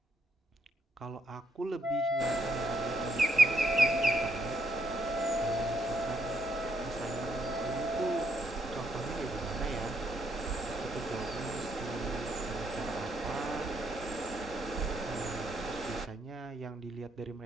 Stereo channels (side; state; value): both; normal; correlation 0.75